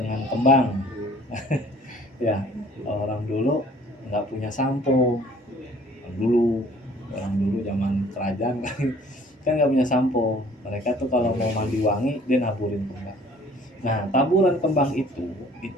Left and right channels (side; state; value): both; normal; correlation 0.54